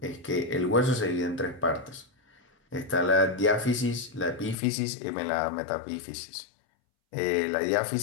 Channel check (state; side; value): drops out; right; at 4.5 s